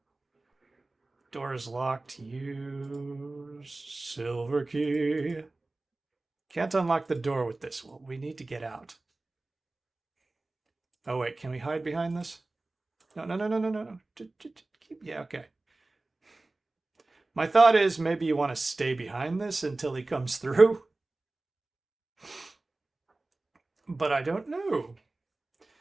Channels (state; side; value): quieter; left; 3.1 dB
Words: Door is locked. Use silver key. Can't unlock the door with this. Well, we need to get out. Oh, wait. Can we hide behind this? No. Yeah, okay. My thought is maybe you want to stay behind this until he comes through. But I don't know.